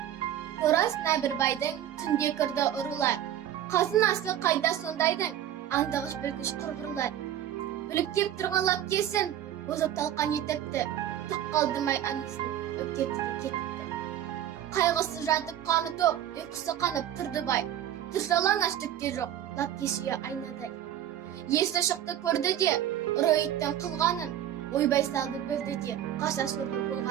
Қорасына бір байдың түнде кірді ұрылар. Қазынасы қайда сондайдың, аңдағыш білгіш құрғырлар. Біліп кеп тұрғанлап кесін, озып талқан етіпті. Түк қалдымай анесін, өптепті де кетіпті. Қайғысы жатып қаны тоқ, ұйқысы қанып тұрды бай. Тұршалаң аштықке жоқ, лап кешіе айнадай. Есі шықты көрді де, ұры иттің қылғанын, ойбай салды білді де, қаша сорлы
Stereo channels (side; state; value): left; quieter; 11.2 dB